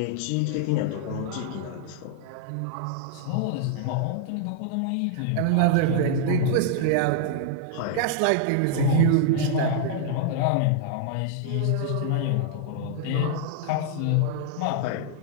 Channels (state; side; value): different; both; correlation -0.01